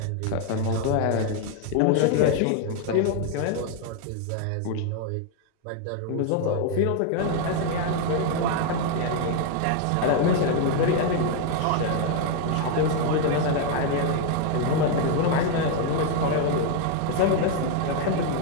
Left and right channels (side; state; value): both; different; correlation 0.01